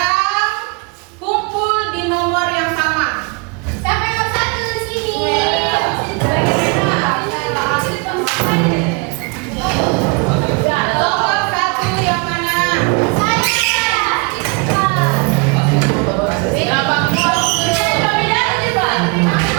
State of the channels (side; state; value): left; quieter; 31.3 dB